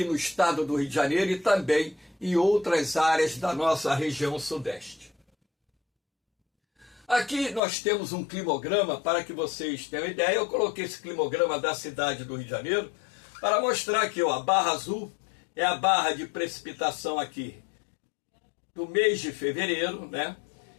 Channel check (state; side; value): drops out; right; at 7.6 s